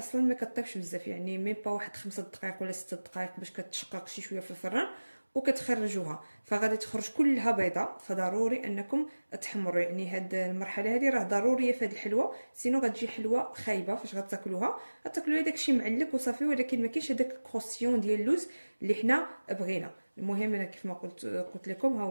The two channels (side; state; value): both; inverted; correlation -1.00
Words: ما كطيبش بزاف، يعني ميم با واحد 5 دقائق ولا 6 دقائق باش كتشقق شي شويه في الفران وكتخرجوها، فغادي تخرج كلها بيضاء. فضروري انكم تحمروا، يعني هاد المرحله هذه راه ضروريه في هاد الحلوه، سينو غتجي حلوه خايبه فاش غتاكلوها. غتاكلوا داكشي معلك وصافي، ولكن ما كاينش هذاك الكروسيون ديال اللوز اللي حنا بغينا. المهم انا كيف ما قلت لكم ها